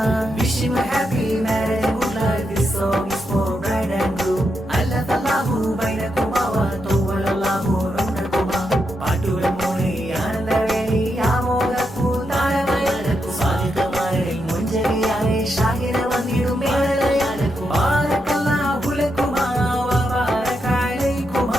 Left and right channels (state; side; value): normal; both; correlation 0.83